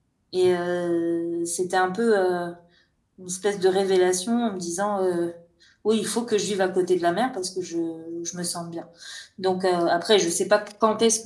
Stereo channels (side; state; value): both; identical; correlation 1.00